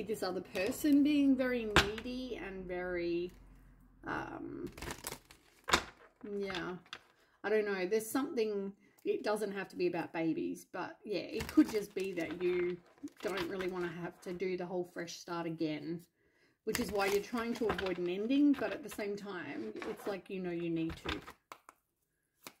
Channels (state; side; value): identical; both; correlation 1.00